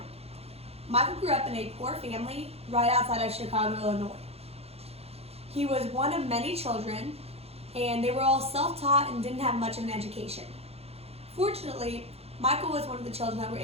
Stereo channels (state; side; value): late; left; 0.29 ms